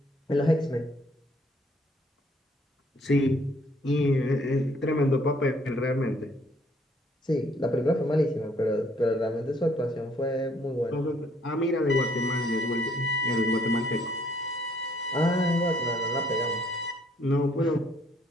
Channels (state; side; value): normal; both; correlation 0.65